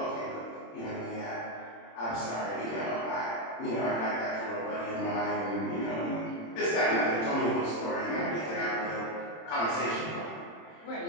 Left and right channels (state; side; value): late; right; 26 ms